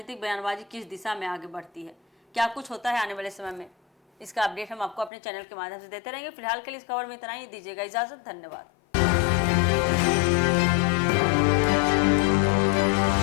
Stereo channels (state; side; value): drops out; right; at 5.1 s